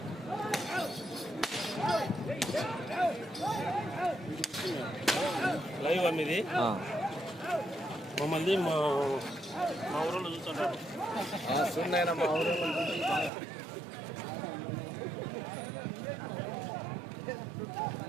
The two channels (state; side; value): drops out; left; at 13.3 s